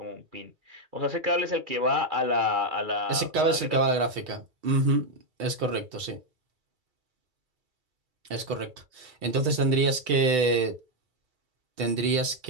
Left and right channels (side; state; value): left; late; 2.3 ms